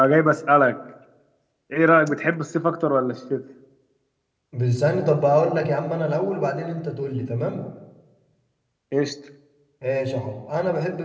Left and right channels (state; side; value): identical; both; correlation 1.00